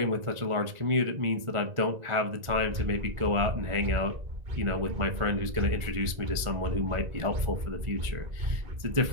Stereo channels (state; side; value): late; left; 1.5 ms